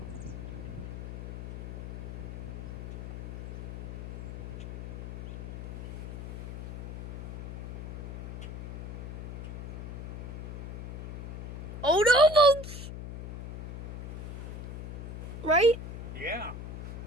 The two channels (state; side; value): noise; left; hum, 7 dB below the sound